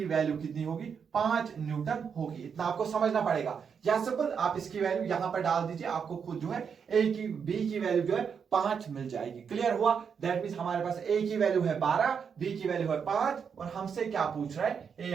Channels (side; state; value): left; quieter; 6.7 dB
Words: वैल्यू कितनी होगी, 5 न्यूटन होगी। इतना आपको समझना पड़ेगा। या सिंपल आप इसकी वैल्यू यहां पर डाल दीजिए, आपको खुद जो है बी की वैल्यू जो है 5 मिल जाएगी। क्लियर हुआ? दैट मीन हमारे पास ए की वैल्यू है 12, बी की वैल्यू है 5 और हमसे क्या पूछ रहा है, ए